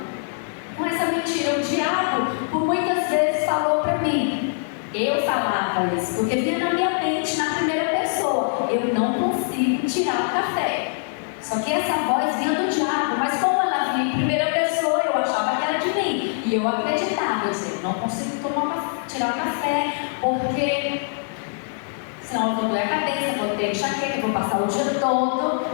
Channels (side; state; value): right; silent; digital silence